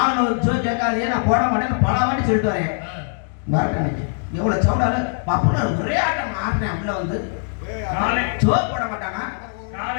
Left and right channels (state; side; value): silent; right; 65 dB below the other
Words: வந்து கேட்காதே நான் போட மாட்டேன் பல வாட்டி சொல்லிட்டு வரேன். பாருங்க இன்னைக்கு எவ்வளவு சவுடால பாப்பா ஒரே ஆட்டம் ஆடுறேன். உள்ள வந்து சோறு போட மாட்டானா?